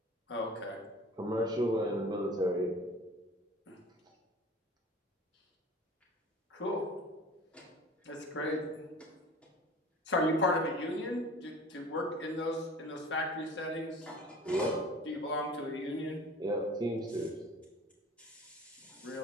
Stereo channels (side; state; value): both; normal; correlation 0.42